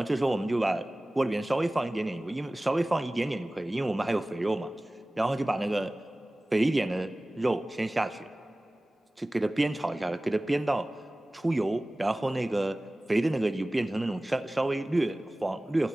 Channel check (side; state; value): both; normal; correlation 0.98